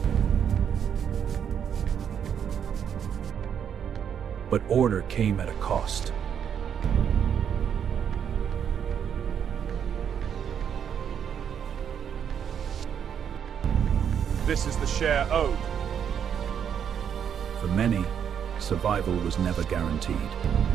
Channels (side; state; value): left; quieter; 8.2 dB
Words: But order came at a cost. This is the share owed. For many, survival was never guaranteed.